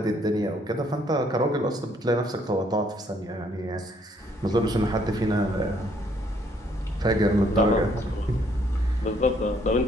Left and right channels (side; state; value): both; normal; correlation 0.66